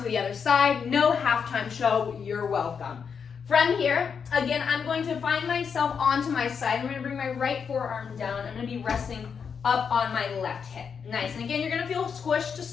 to the other side. No halftime show. You're welcome. From here, again, I'm going to find myself onto my side. I'm going to bring my right forearm down. I'm going to be resting up on my left hip. Nice. And again, you're going to feel squished to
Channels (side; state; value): right; quieter; 6.5 dB